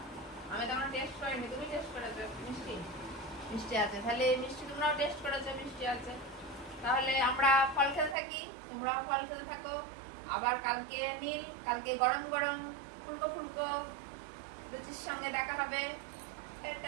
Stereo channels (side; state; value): left; drops out; at 8.2 s